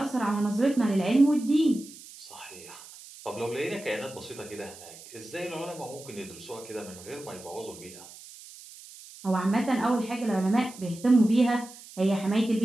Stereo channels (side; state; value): right; noise; hiss, 18 dB below the sound